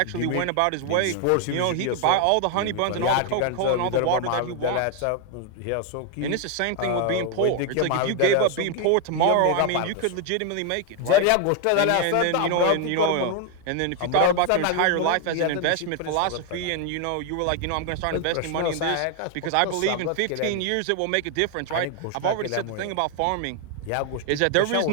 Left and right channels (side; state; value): both; different; correlation 0.01